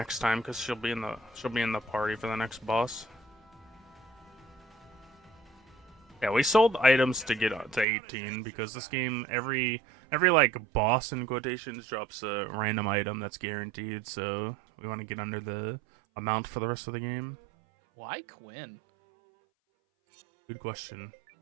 time because she'll be in the party for the next boss. Yeah, we sold items to get to 18 because this game every like boss in quotations drops a random item that's guaranteed, so we want to get under the amount for the rest of the game. Why Quinn? Good question.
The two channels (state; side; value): drops out; left; at 7.9 s